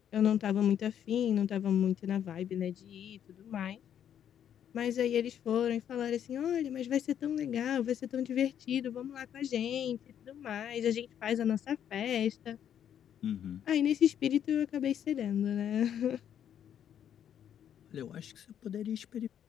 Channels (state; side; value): quieter; right; 9.5 dB